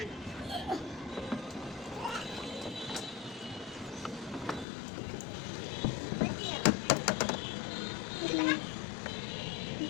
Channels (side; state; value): right; drops out; at 4.7 s